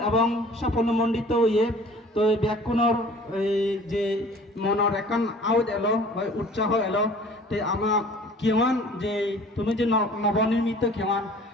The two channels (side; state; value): both; normal; correlation 0.49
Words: এবং সাফল্যমণ্ডিত ইয়ে তো ব্যাকুণর যে মনের একান আউট এলো বা উৎসাহ এলো তে আমার কেমন যে তুমি যে নবনির্মিত কেমন